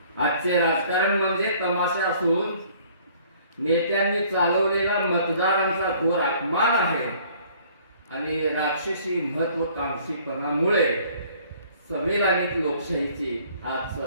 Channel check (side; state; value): both; inverted; correlation -0.56